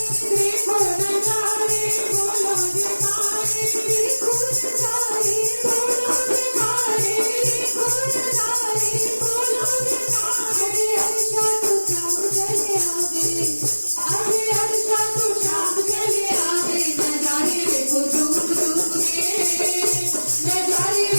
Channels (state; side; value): inverted; both; correlation -1.00